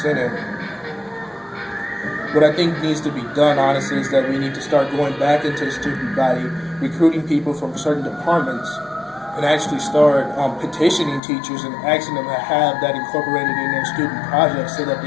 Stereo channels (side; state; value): right; drops out; at 11.2 s